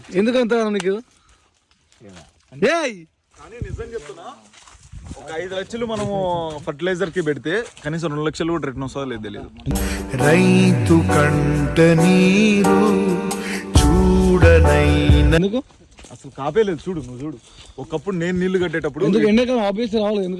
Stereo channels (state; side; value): identical; both; correlation 1.00